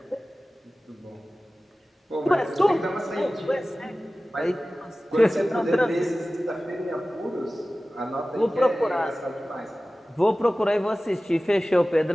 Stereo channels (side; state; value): both; normal; correlation 0.96